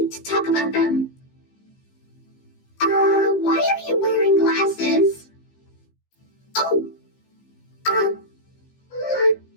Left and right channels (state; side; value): late; right; 15 ms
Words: to talk about them. Why are you wearing glasses? Oh,